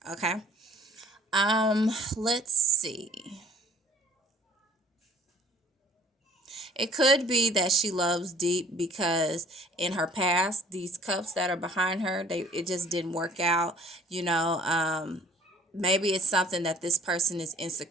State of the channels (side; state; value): both; normal; correlation 0.54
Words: Okay. Let's see. It could be that she loves deep because in her past, these cups that are behind her, it just didn't work out. You know, maybe it's something that this person is